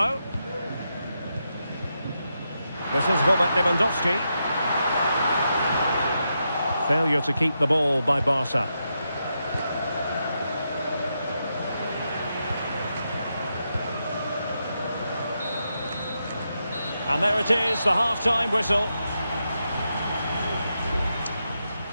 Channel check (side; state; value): both; inverted; correlation -0.85